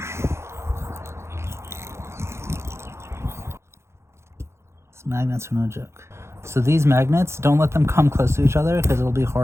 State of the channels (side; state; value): left; late; 0.13 ms